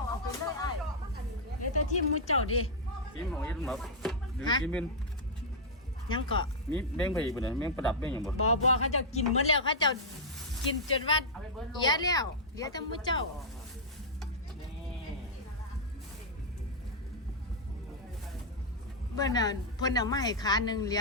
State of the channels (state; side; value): normal; both; correlation -0.06